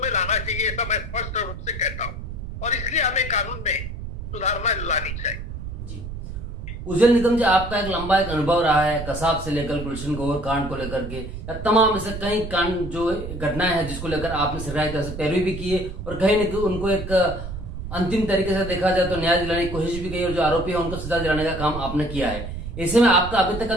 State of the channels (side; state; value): right; noise; rumble, 8 dB below the sound